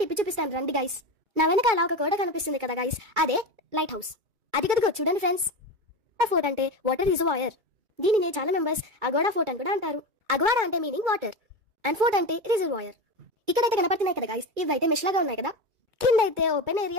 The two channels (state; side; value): late; left; 2.2 ms